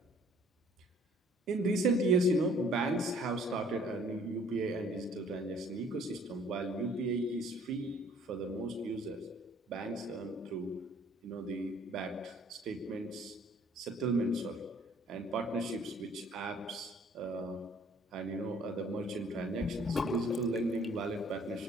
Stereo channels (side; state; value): both; normal; correlation 0.57